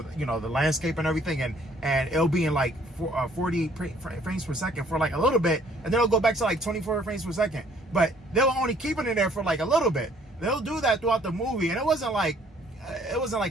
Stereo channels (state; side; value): normal; both; correlation 0.60